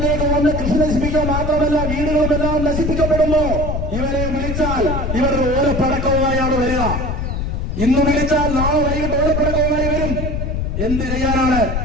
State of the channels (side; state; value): left; noise; rumble, 2 dB below the sound